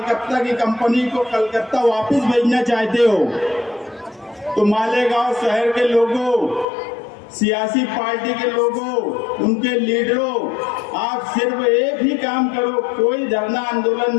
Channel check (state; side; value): drops out; right; at 6.7 s